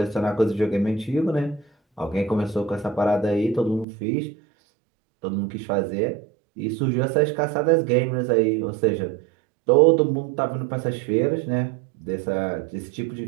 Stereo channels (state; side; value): drops out; left; at 3.9 s